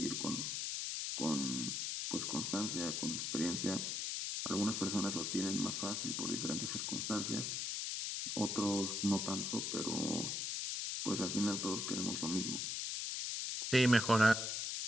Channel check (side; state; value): left; noise; hiss, 1 dB below the sound